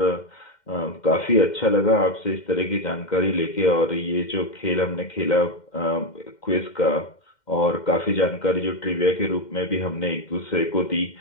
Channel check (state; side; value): late; right; 2.1 ms